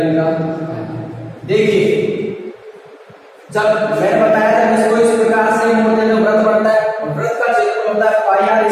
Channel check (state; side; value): identical; both; correlation 1.00